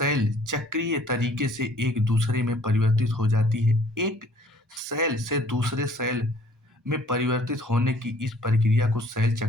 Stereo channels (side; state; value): both; normal; correlation 0.57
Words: चक्रीय तरीके से एक दूसरे में परिवर्तित हो जाती है। एक सेल से दूसरे सेल में परिवर्तित होने की इस प्रक्रिया को सेल चक्र